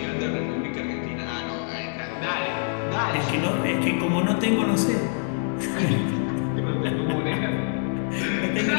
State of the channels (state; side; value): silent; right; 59 dB below the other